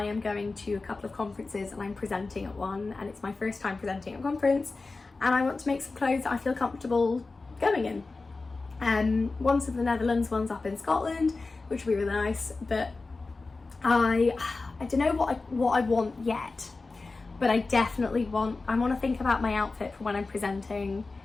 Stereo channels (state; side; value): quieter; right; 3.7 dB